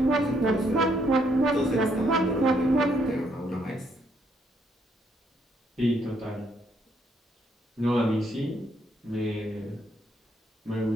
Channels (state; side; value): normal; both; correlation 0.72